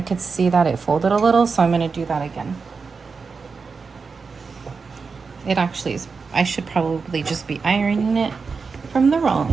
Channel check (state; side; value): quieter; left; 4.9 dB